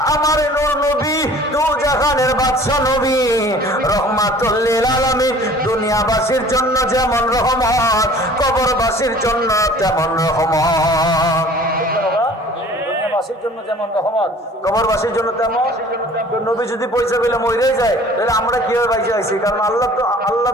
আমার নূর নবী দু জাহানের বাদশা নবী রহমাতুল লিল আলামিন, দুনিয়াবাসীর জন্য যেমন রহমত, কবরবাসীর জন্য তেমন রহমত। দুনিয়াবাসীর জন্য যেমন রহমত, কবরবাসীর জন্য তেমন। নবী যদি পয়সা পেলে মরেই যায়, তাহলে আমরা কিভাবে বাইসে আইছি? কারণ আল্লাহ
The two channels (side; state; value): both; normal; correlation 0.49